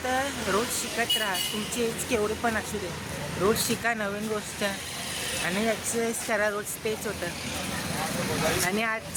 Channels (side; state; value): both; identical; correlation 1.00